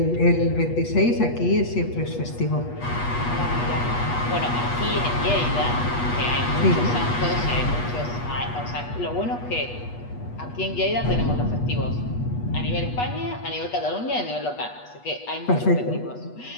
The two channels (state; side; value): late; right; 8.3 ms